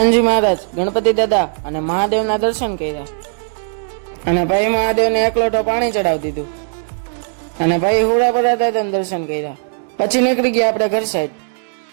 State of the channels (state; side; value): silent; left; digital silence